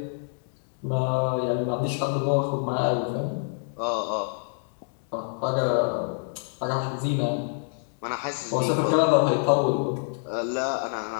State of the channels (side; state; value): right; silent; digital silence